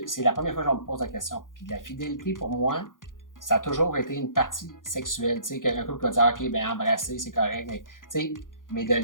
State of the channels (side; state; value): right; late; 0.89 ms